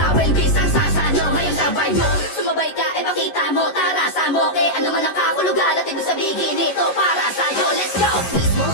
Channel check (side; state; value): right; late; 11 ms